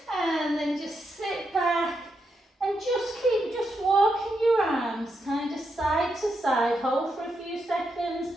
And then just sit back and just keep walking your arms kind of side to side. Hold for a few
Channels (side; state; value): both; normal; correlation 0.83